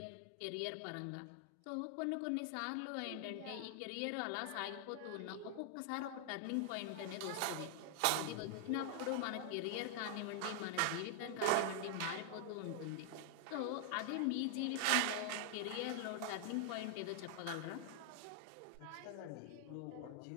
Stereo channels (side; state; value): both; different; correlation 0.00